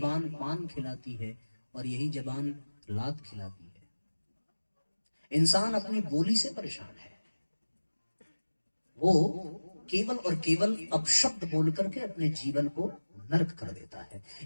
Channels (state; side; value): inverted; both; correlation -1.00